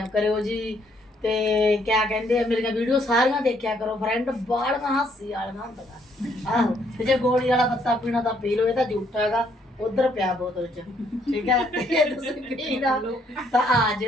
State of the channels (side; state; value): both; normal; correlation 0.69